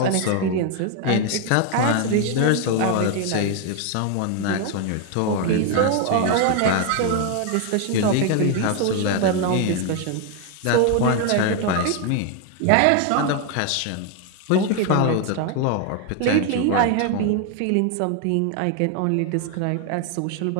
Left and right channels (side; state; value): both; different; correlation 0.01